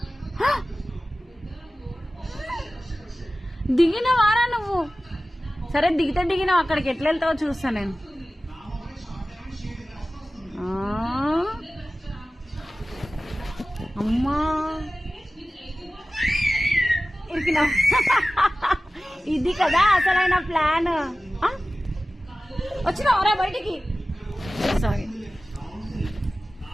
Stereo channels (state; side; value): normal; both; correlation 0.96